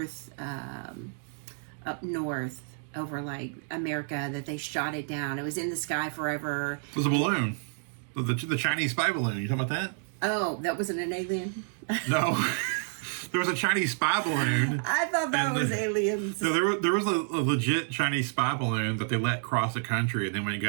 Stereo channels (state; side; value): silent; left; 58 dB below the other